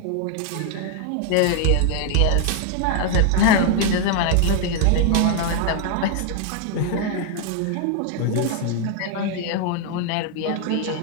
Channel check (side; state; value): both; different; correlation 0.00